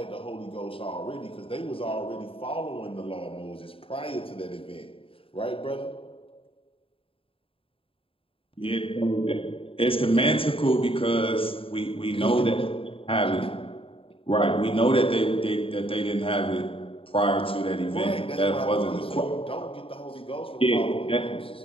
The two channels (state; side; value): late; right; 0.27 ms